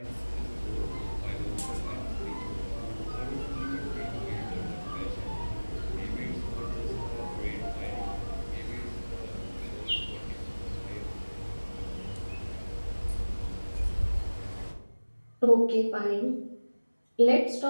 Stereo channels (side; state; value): both; inverted; correlation -1.00